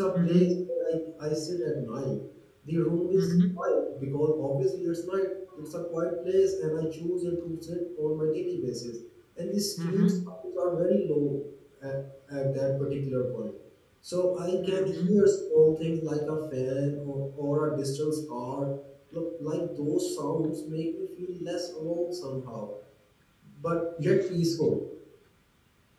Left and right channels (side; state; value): both; identical; correlation 1.00